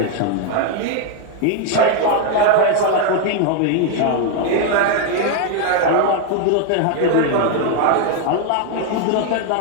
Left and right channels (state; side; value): different; both; correlation 0.01